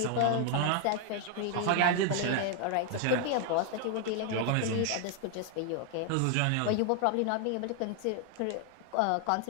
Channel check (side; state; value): both; different; correlation 0.00